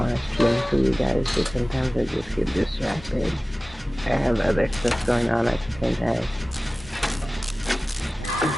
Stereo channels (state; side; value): normal; both; correlation 0.97